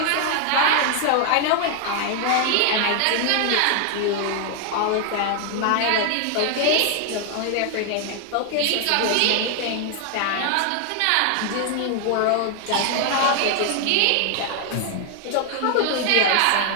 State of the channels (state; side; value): different; both; correlation 0.00